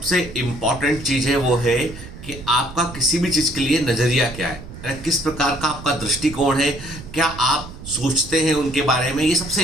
इम्पॉर्टेंट चीज़ है वो है कि आपका किसी भी चीज़ के लिए नज़रिया क्या है, यानी किस प्रकार का आपका दृष्टिकोण है, क्या आप सोचते हैं उनके बारे में। ये सबसे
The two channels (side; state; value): right; noise; rumble, 14 dB below the sound